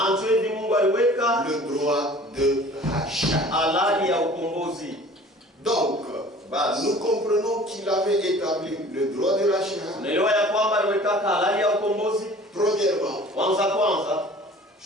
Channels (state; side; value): normal; both; correlation 0.47